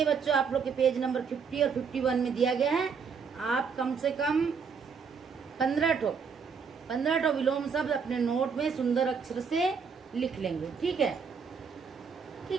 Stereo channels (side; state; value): left; quieter; 5.9 dB